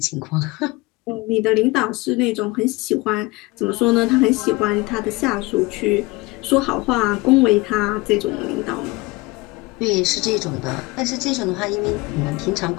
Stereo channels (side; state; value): right; quieter; 23.0 dB